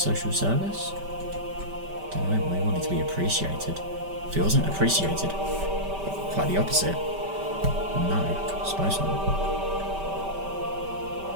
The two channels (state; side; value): late; left; 5.1 ms